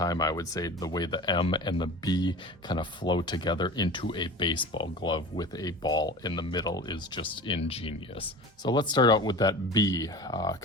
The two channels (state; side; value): normal; both; correlation 0.35